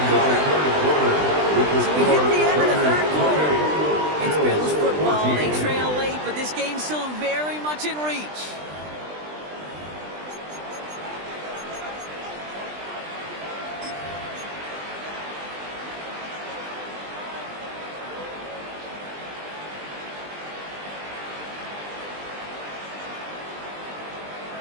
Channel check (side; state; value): left; late; 20 ms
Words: of this 3rd quarter. So we hit the end of the 3rd quarter. It's Bills football. They trail late, but this game's still very much in reach.